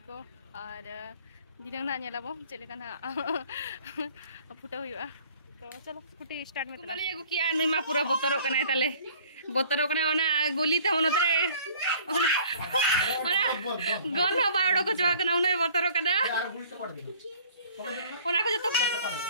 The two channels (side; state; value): both; inverted; correlation -0.52